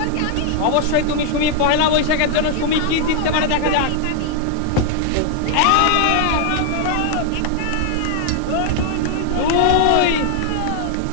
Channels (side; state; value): both; different; correlation 0.00